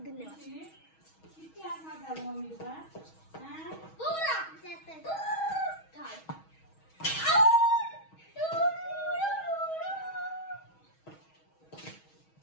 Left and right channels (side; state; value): right; late; 6.3 ms